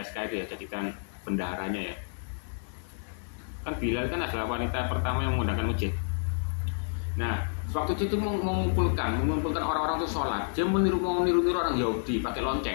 itu ya, jadikan bendaharanya ya. Kan Bilal kan adalah wanita pertama yang menggunakan masjid. Nah, waktu itu mengumpulkan orang-orang itu sholat. Dia mau niru orang Yahudi pakai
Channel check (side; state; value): right; silent; digital silence